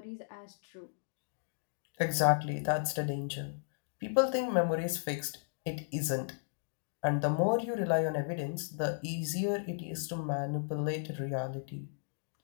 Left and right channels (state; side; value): silent; right; digital silence